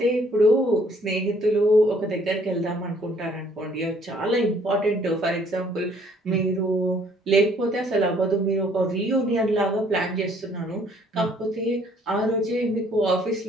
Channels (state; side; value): normal; both; correlation 0.62